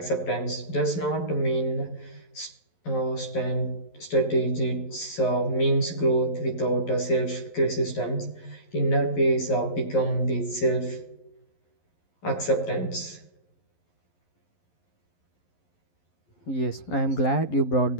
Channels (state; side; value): late; right; 11 ms